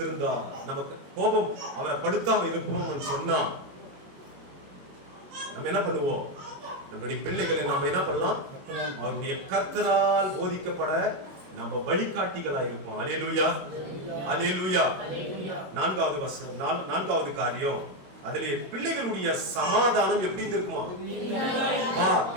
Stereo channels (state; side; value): late; left; 21 ms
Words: நமக்கு கோபம் அவரை படுத்தாமல் இருப்போம்னு சொன்னா நம்ம என்ன பண்ணுவோம், நம்முடைய பிள்ளைகளை நம்ம என்ன பண்ணலாம், அவருடைய கர்த்தரால் போதிக்கப்பட நம்ம வழிகாட்டிகளா இருப்போம். அல்லேலூயா, அல்லேலூயா. நான்காவது காரியம், அதிலே பிள்ளைகளுடைய சமாதானம் எப்படி இருக்குமா,